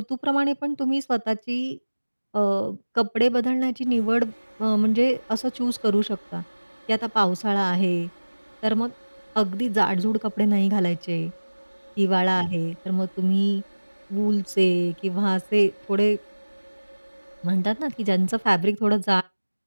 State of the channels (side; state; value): both; inverted; correlation -1.00